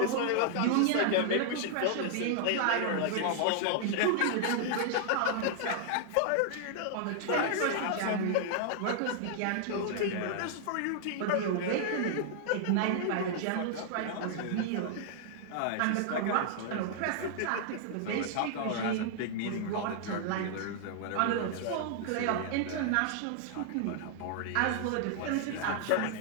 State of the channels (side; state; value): both; different; correlation -0.01